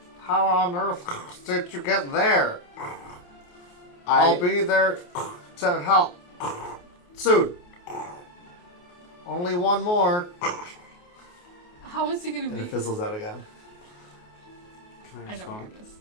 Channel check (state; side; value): late; right; 28 ms